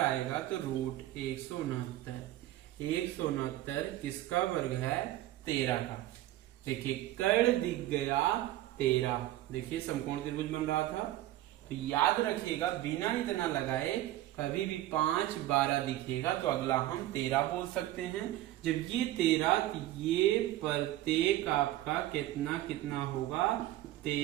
आएगा तो रूट 169। 169 किसका वर्ग है? 13 का। देखिए कर्ण दिख गया 13। देखिए समकोण त्रिभुज बन रहा था। तो याद रखिएगा बिना इतना लगाए कभी भी 5 12 दिखेगा तो अगला हम 13 बोल सकते हैं। जब ये 13 तो ये प्रत्येक आपका कितना कितना होगा?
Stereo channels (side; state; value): left; quieter; 15.0 dB